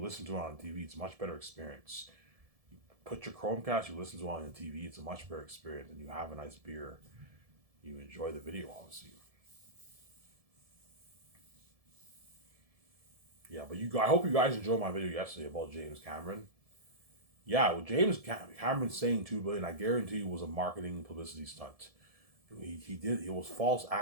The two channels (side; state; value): left; late; 1.7 ms